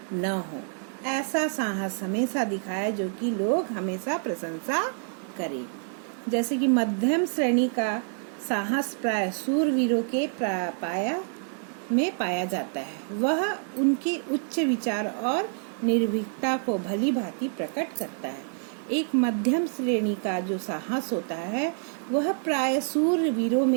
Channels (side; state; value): left; silent; 59 dB below the other